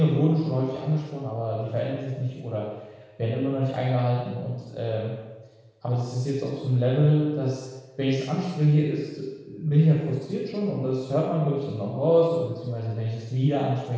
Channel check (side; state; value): both; identical; correlation 1.00